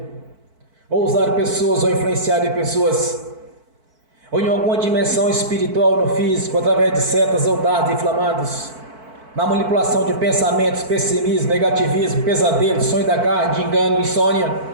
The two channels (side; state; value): left; late; 4.5 ms